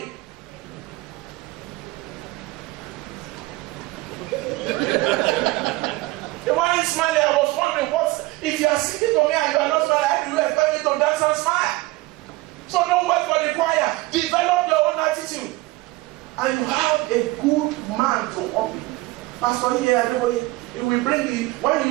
They weren't smiling. I was wondering, if you are singing to me and you are not smiling, how do you expect me to dance and smile? So don't wait for the choir. Develop your own attitude. And you have a good man to open. Pastor here, it will bring you, when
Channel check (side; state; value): left; quieter; 20.4 dB